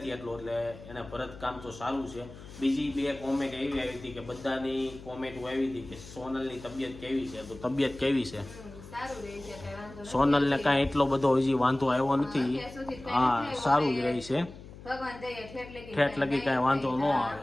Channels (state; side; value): noise; left; hum, 16 dB below the sound